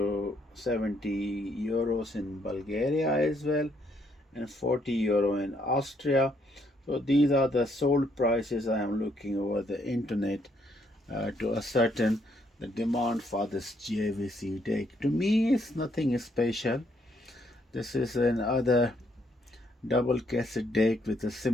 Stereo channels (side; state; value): both; normal; correlation 0.71